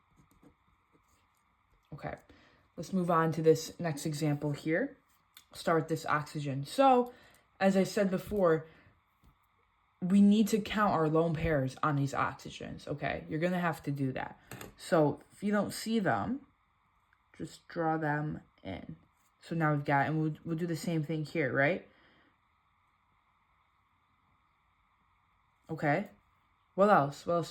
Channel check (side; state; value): both; identical; correlation 1.00